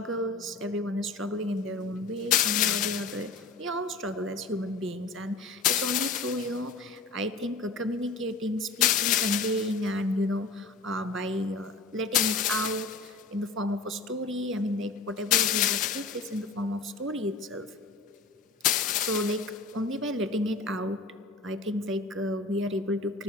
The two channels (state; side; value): quieter; right; 4.2 dB